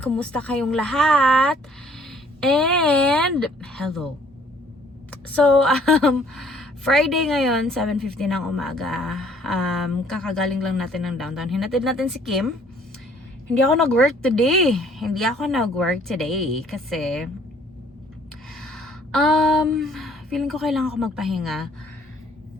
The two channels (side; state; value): both; normal; correlation 0.59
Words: kumusta kayong lahat? And hello. So, Friday ngayon, 7:50 ng umaga. Kakagaling lang natin ng downtown. Hinatid natin si Kim. Hindi ako nag-work today. Kasi feeling ko kailangan ko magpahinga.